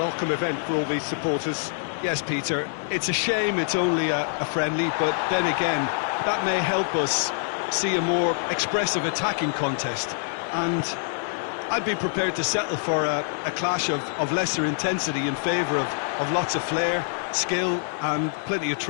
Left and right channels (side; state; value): right; silent; digital silence